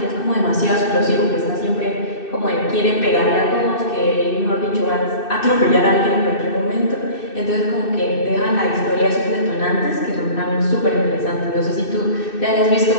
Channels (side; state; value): right; late; 2.6 ms